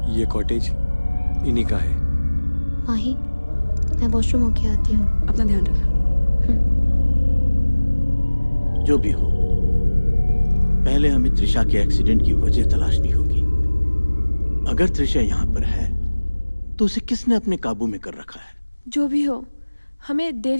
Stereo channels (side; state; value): both; inverted; correlation -1.00